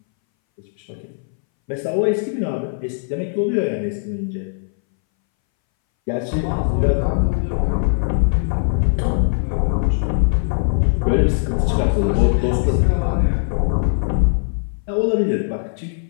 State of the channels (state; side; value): silent; right; 63 dB below the other